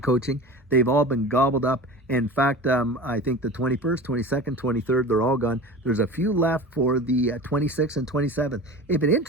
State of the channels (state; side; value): normal; both; correlation 0.34